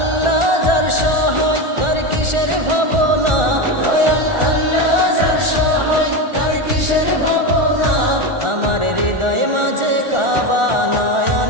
যার সহায় তার কিসের ভাবনা, দয়াল আল্লাহ যার সহায় তার কিসের ভাবনা। আমার হৃদয় মাঝে কাবা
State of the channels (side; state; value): left; late; 1.4 ms